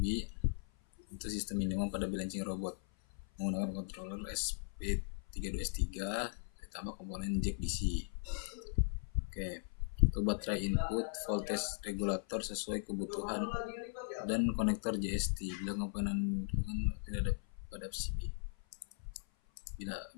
untuk sistem minimum pada balancing robot menggunakan controller SP32S3 ditambah komponen jack DC. Oke, untuk baterai input voltage regulator sesuai kebutuhan dan konektor JST bila komponen tidak ada pada PCB.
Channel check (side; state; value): right; silent; 52 dB below the other